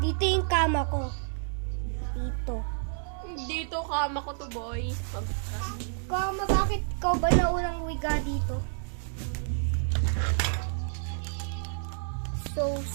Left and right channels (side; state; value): left; silent; digital silence